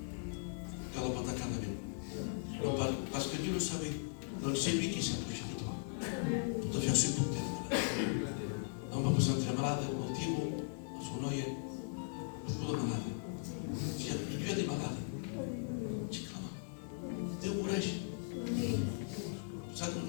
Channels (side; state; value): right; silent; 52 dB below the other